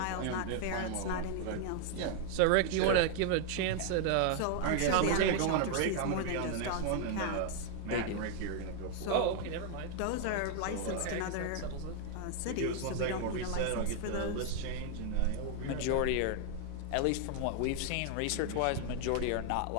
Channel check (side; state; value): both; different; correlation 0.00